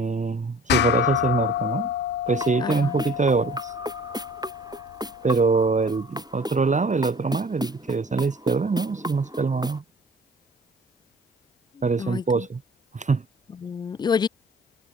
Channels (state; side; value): normal; both; correlation 0.50